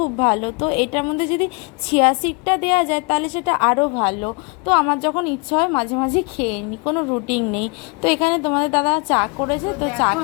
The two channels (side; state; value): right; quieter; 32.3 dB